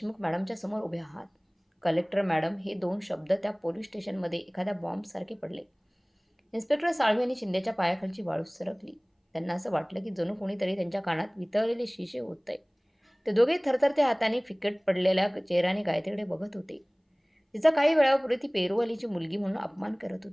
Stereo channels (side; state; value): both; identical; correlation 1.00